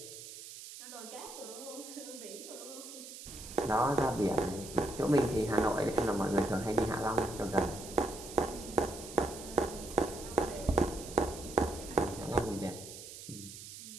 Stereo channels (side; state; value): right; noise; hiss, 13 dB below the sound